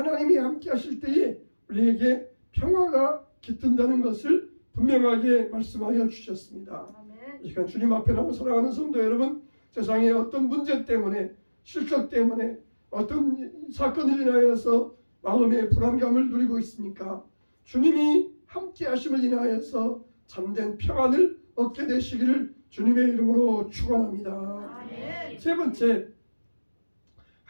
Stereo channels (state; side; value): inverted; both; correlation -1.00